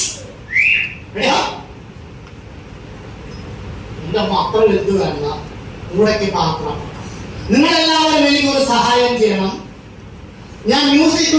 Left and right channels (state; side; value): identical; both; correlation 1.00